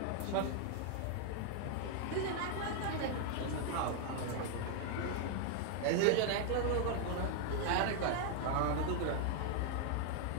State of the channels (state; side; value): different; both; correlation 0.00